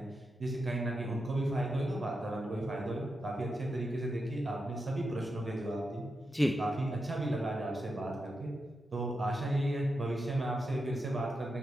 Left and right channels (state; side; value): normal; both; correlation 0.87